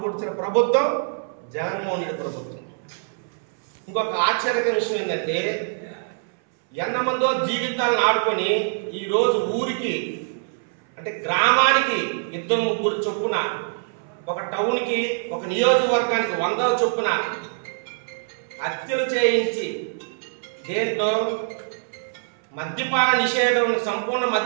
పొడిచిన ప్రభుత్వం జగన్మోహన్ రెడ్డి ప్రభుత్వం. ఇంకొక ఆశ్చర్యకర విషయం ఏంటంటే, ఎంతమందో జీవితాలను ఆడుకొని ఈరోజు ఊరికి అంటే గ్రామానికి 2-3 చొప్పున, ఒక టౌన్కి ఒక నియోజకవర్గానికి 100 చొప్పున హత్యలు చేయించి దేంట్లో మద్యపాన నిషేధం, సంపూర్ణ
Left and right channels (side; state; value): left; silent; 60 dB below the other